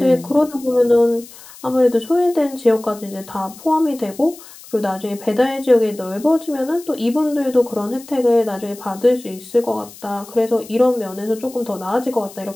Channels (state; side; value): noise; left; hiss, 19 dB below the sound